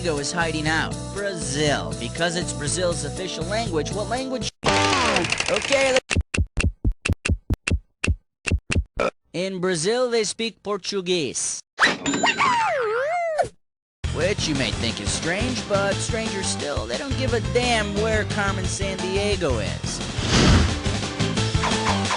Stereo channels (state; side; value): identical; both; correlation 1.00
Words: is hiding out. Brazil. Because it's Brazil's official language, what language? Okay, in Brazil, they speak Portuguese. Which you may think is strange, but stranger still, they don't give a damn where Carmen Sandiego is.